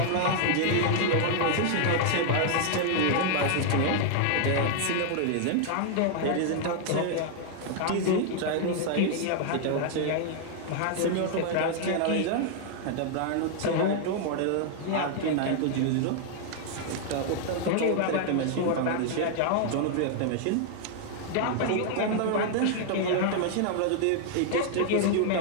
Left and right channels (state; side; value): different; both; correlation 0.00